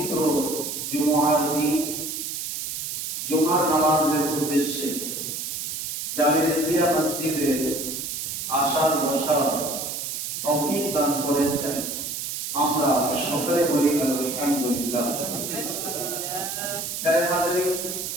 জুমার দিন জুমার নামাজের উদ্দেশ্যে জামিয়া মসজিদে আসার বসার তৌফিক দান করেছেন। আমরা সকলে বলি আলহামদুলিল্লাহ।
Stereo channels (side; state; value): right; noise; hiss, 4 dB below the sound